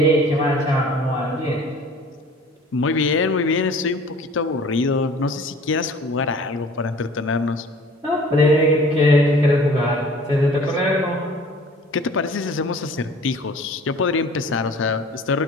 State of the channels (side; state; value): both; normal; correlation 0.48